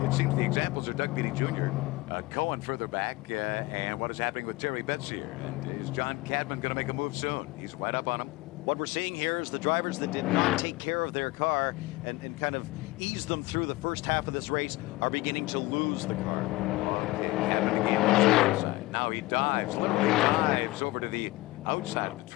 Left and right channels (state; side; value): quieter; right; 20.3 dB